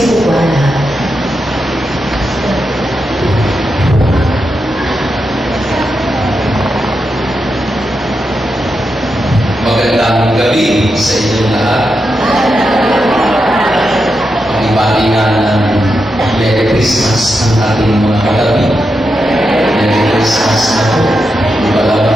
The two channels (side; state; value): both; normal; correlation 0.86